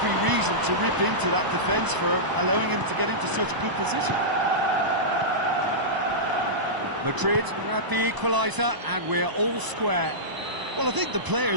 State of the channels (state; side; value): late; left; 1.0 ms